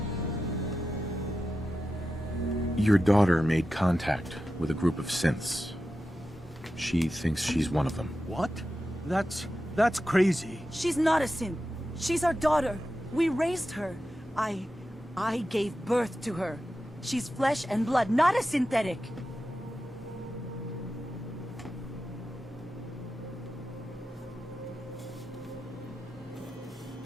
Your daughter made contact with a group of synths. She thinks she's one of them. What? That's crazy. She's not a synth. She's our daughter. We raised her. I gave birth to her. She's flesh and blood, not a synthetic.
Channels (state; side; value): normal; both; correlation 0.91